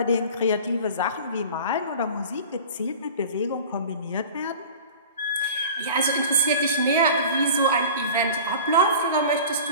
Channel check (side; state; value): both; inverted; correlation -0.39